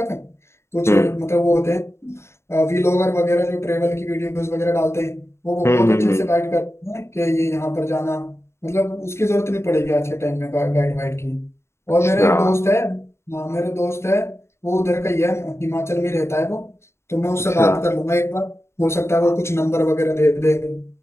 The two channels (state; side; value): late; right; 0.13 ms